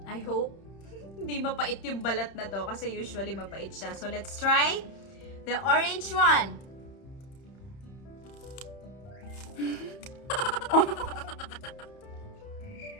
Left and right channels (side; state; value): right; late; 31 ms